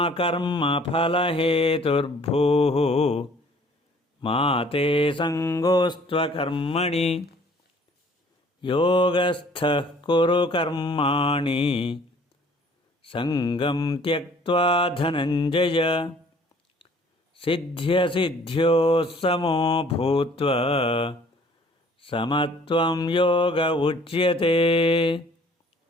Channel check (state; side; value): normal; both; correlation 0.55